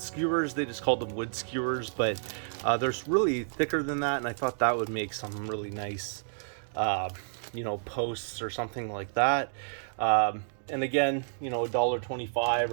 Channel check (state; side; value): silent; left; digital silence